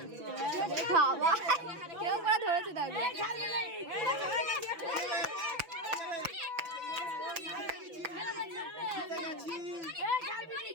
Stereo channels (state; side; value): late; left; 6.0 ms